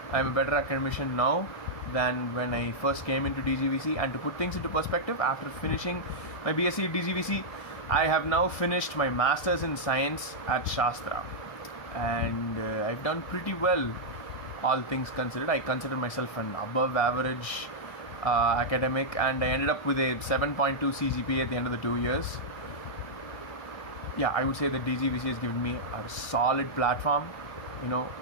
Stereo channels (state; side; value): late; right; 1.6 ms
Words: now than when I first came into DGVC. And to put things into perspective, after finishing my BSc at DGVC, I have now finished my Masters in Science at Shastra, and I've done pretty well, all things considered. I consider myself an above average academic, and I ended up with a 7.2 CGPA at the end of the 2 years. Yeah, I would say that DGVC has given me a solid platform,